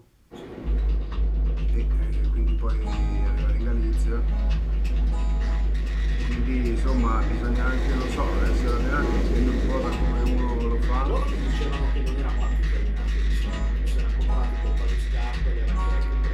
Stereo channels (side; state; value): both; identical; correlation 1.00